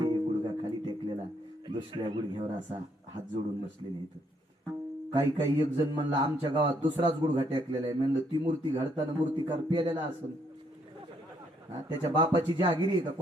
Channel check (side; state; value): both; normal; correlation 0.71